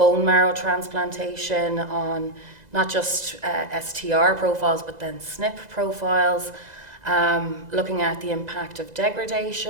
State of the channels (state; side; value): late; left; 2.0 ms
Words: marrow transplantation on not just STR profiles, but then SNP profiles, looking at the impact of